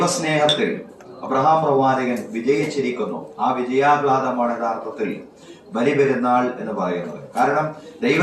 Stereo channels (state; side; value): identical; both; correlation 1.00